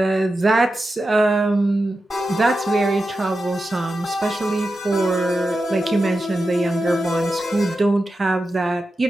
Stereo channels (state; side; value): normal; both; correlation 0.91